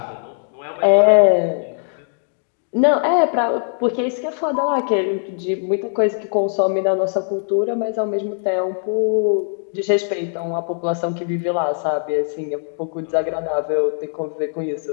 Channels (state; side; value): silent; right; digital silence